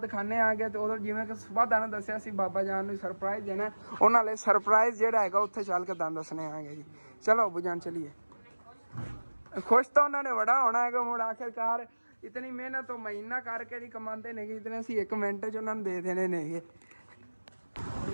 ਆਗੇ। ਤੇ ਉਦੋਂ ਜਿਵੇਂ ਕਿ ਸੁਬਾਹ ਦਾਣਾ ਦੱਸਿਆ ਸੀ ਬਾਬਾ ਜਾਨ ਨੂੰ ਸਰਪ੍ਰਾਈਜ਼ ਦੇਣਾ, ਉਹਨਾਂ ਲਈ ਸਰਪ੍ਰਾਈਜ਼ ਜਿਹੜਾ ਹੈਗਾ ਉੱਥੇ ਚੱਲ ਕੇ ਦਾਣ ਦੱਸਣੇ ਆਗੇ ਜੀ। ਚਲੋ ਅੱਬੂ ਜਾਨ ਚਲੀਏ। खुश तो उन्होंने बड़ा होना है कि मुड़ आखिरकार इतनी मेहनत तो महीना करके नहीं कमाते ने, इतने असी 1 मिनट च उन्होंने दे देने ने।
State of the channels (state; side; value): inverted; both; correlation -1.00